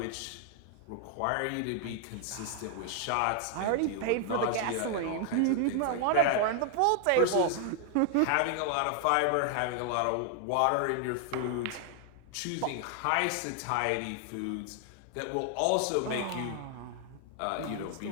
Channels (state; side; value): different; both; correlation 0.00